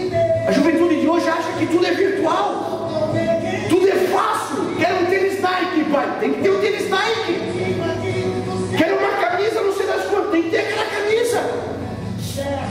A juventude de hoje acha que tudo é virtual, tudo é fácil. Quero um tênis Nike, pai, tem que ter um tênis Nike. Quero uma camisa, não sei das quantas, tem que ter aquela camisa.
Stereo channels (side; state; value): both; identical; correlation 1.00